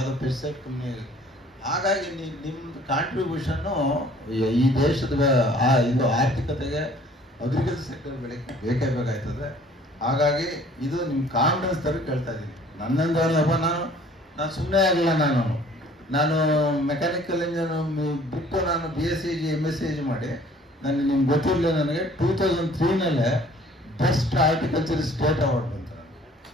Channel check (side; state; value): both; normal; correlation 0.54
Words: ಪೆಸ್ಟಿಸೈಡ್ ಕಂಪ್ನಿ. ಹಾಗಾಗಿ ನಿಮ್ದು ಕಾಂಟ್ರಿಬ್ಯೂಷನ್ನು ಈ ದೇಶದ ಇದು ಆರ್ಥಿಕತೆಗೆ ಅಗ್ರಿಕಲ್ಚರ್ ಸೆಕ್ಟರ್ ಬೆಳಕ್ಕೆ ಬೇಕೇ ಬೇಕಾಯ್ತದೆ. ಹಾಗಾಗಿ ಇದು ನಿಮ್ಮ ಕಾನ್ಫಿಡೆನ್ಸ್ ತರ ಕೇಳ್ತಾ ಇದ್ದೀನಿ. ನನ್ನಂದಪ್ಪ ನಾನು ಸುಮ್ಮನೆ ಆಗಿಲ್ಲ. ನಾನು ಮೆಕ್ಯಾನಿಕಲ್ ಇಂಜಿನಿಯರ್ ಬಿಟ್ಟು ನಾನು BSc MSc ಮಾಡಿ ನಿಮ್ಗೆ ಗೊತ್ತಿರಲಿಲ್ಲ, ನನಗೆ 2003 ಬೆಸ್ಟ್ ಹಾರ್ಟಿಕಲ್ಚರ್ ಸ್ಟೇಟ್ ಅವಾರ್ಡ್ ಬಂತು.